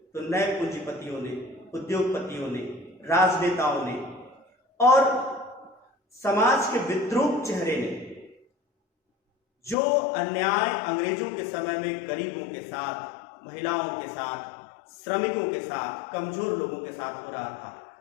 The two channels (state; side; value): drops out; right; at 9.8 s